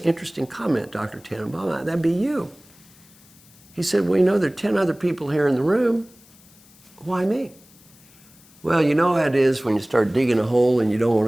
interesting comment, Dr. Tannenbaum. That'd be you." He said, "Well, you know, there are 10 other people here in the room. Why me?" Well, you know how it is when you start digging a hole and you don't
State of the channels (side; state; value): left; noise; hiss, 26 dB below the sound